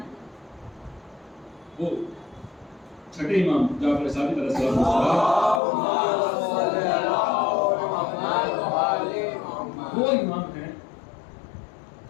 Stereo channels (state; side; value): drops out; right; at 5.6 s